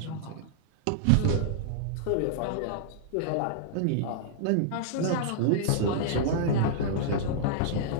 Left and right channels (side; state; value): both; different; correlation -0.02